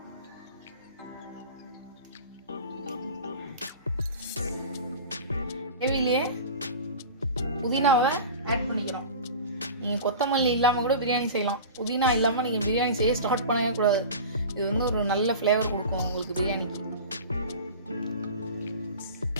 கிரேவிலேயே புதினாவை ஆட் பண்ணிக்கிறோம். நீங்கள் கொத்தமல்லி இல்லாமல் கூட பிரியாணி செய்யலாம். புதினா இல்லாமல் நீங்கள் பிரியாணி செய்ய ஸ்டார்ட் பண்ணவே கூடாது. இது வந்து ஒரு நல்ல ஃப்ளேவர் கொடுக்கும் உங்களுக்கு பிரியாணிக்கு.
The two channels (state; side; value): inverted; both; correlation -0.35